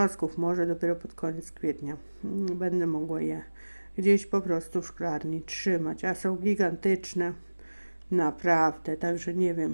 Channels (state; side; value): inverted; both; correlation -1.00